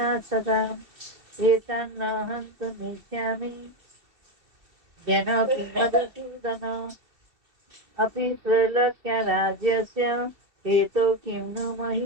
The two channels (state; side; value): late; left; 2.7 ms